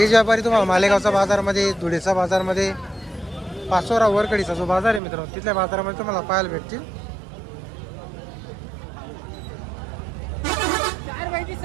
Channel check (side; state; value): left; drops out; at 5.0 s